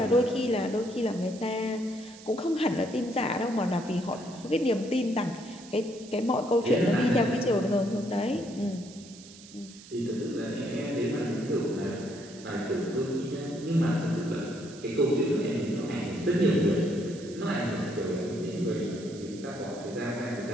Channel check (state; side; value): noise; right; hiss, 19 dB below the sound